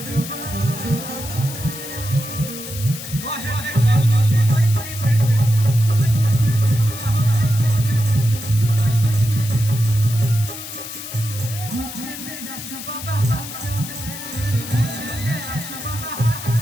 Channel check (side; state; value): left; noise; hiss, 10 dB below the sound